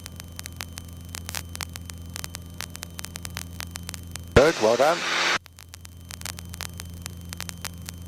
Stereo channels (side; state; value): both; identical; correlation 1.00